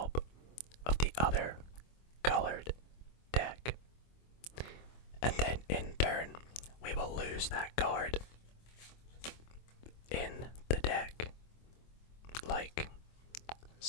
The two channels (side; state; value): right; late; 25 ms